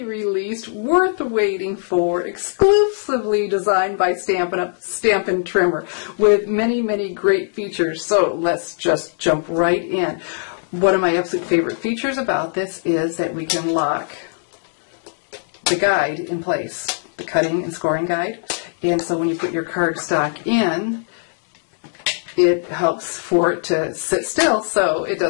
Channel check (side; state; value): right; silent; digital silence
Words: released, worth waiting for, exclusively designed by Stampin' Trimmer, with many, many great features. So let's just jump right in. One of my absolute favorite features about this is that we can lock the guide in place, the cutting and scoring guide. And so when you put your cardstock in, it helps for it to sit still so it